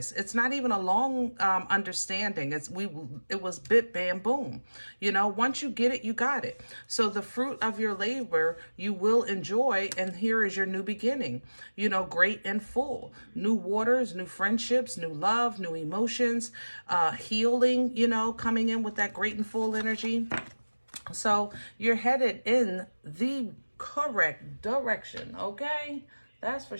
It's not even a long understanding. It was bit, bam, boom, you know. Once you get it, you got it. So the fruit of your labor you will enjoy, and here is your new beginning, you know, great and full. New waters, new friendships, new love, new emotions, healing, you know, coming in with that great and full energy. So you're headed in the correct direction, okay? That's for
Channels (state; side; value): inverted; both; correlation -1.00